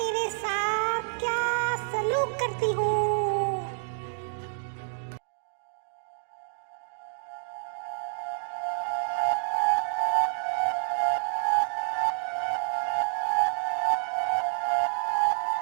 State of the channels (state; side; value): silent; left; digital silence